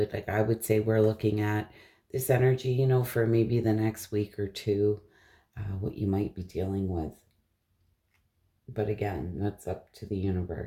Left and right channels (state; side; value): identical; both; correlation 1.00